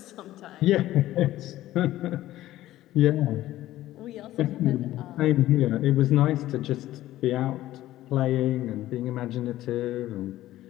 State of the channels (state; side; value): quieter; right; 14.8 dB